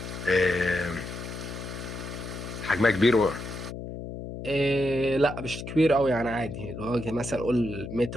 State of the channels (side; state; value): left; noise; hum, 8 dB below the sound